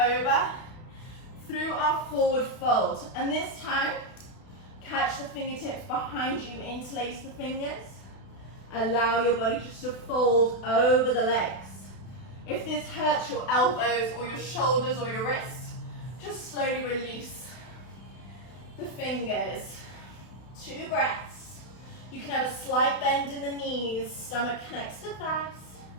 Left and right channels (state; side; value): late; right; 32 ms